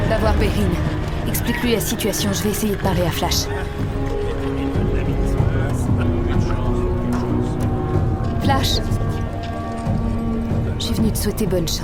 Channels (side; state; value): both; identical; correlation 1.00